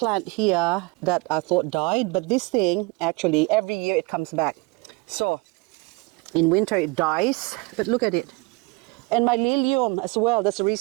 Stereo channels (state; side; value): quieter; left; 26.8 dB